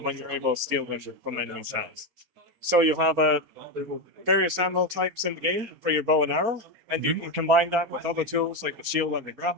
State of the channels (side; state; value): left; late; 4.3 ms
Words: when you're able to steal them from enemies' hands. So you have various ammo types in the game for your bow and arrow, and you can combine that with other tools like the shield and the